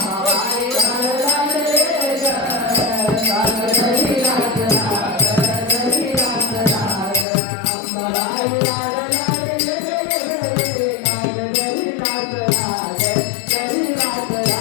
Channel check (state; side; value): drops out; right; at 7.2 s